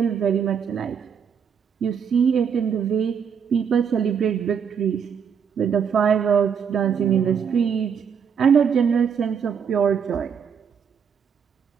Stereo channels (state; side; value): quieter; left; 7.1 dB